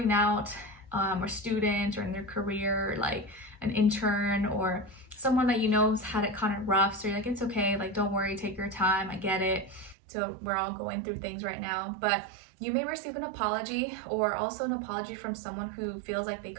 out, or student, or in their career, like an intern, or someone that you know has had it kind of rough. So you're like, it's okay, like, don't worry, take your time, I get it. So we're all going through things right now. But you may receive an apology, or also an apology from someone who feels like they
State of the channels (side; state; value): left; drops out; at 10.0 s